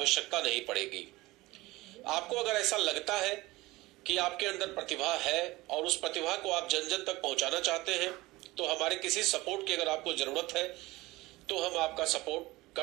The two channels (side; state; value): left; quieter; 20.1 dB